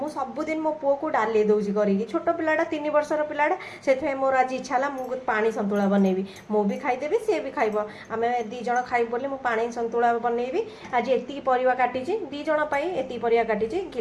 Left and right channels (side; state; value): both; identical; correlation 1.00